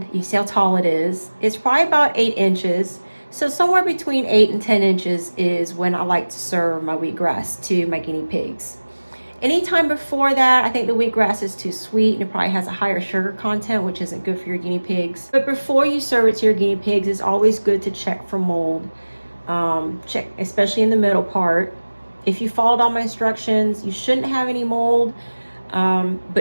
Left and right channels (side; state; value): both; inverted; correlation -1.00